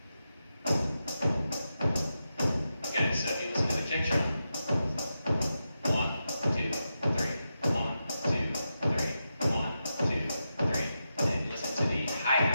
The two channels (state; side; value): inverted; both; correlation -0.88